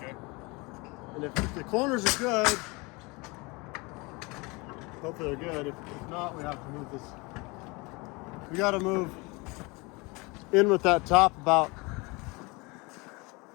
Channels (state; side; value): quieter; right; 26.1 dB